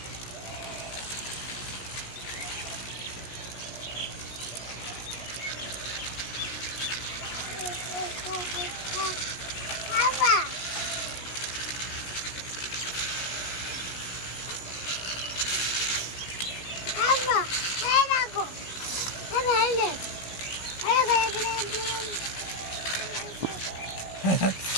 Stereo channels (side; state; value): right; late; 17 ms